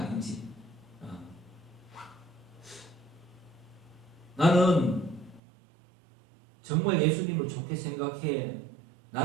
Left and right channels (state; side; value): drops out; left; at 5.4 s